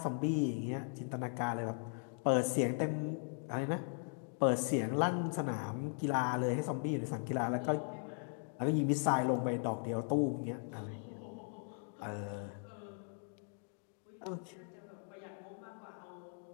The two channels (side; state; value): right; silent; 52 dB below the other